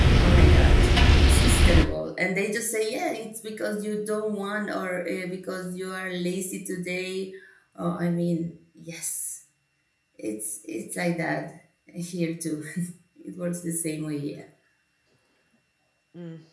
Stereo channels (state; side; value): identical; both; correlation 1.00